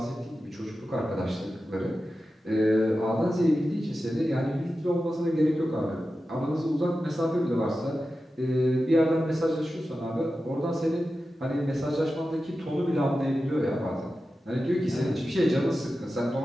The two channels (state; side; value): normal; both; correlation 0.93